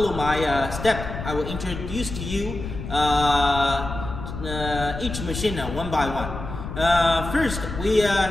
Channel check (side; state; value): left; noise; rumble, 8 dB below the sound